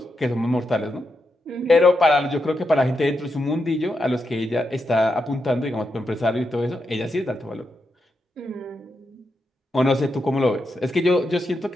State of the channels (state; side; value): normal; both; correlation 0.85